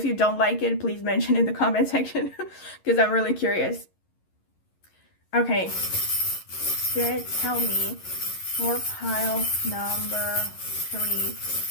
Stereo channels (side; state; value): right; late; 11 ms